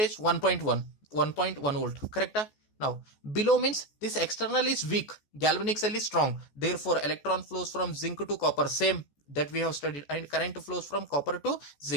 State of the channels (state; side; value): late; right; 14 ms